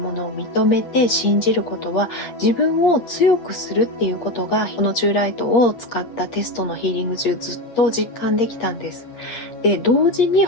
のを認めて信じることは、自分を強くするっていうことが、このチューライトを使ったテストのヒーリング中ずっと実感できたんです。で、同時に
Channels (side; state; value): right; late; 8.9 ms